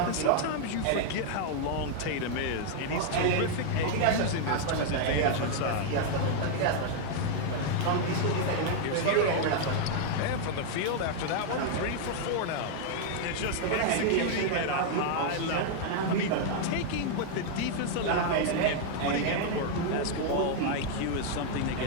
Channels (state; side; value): different; both; correlation 0.00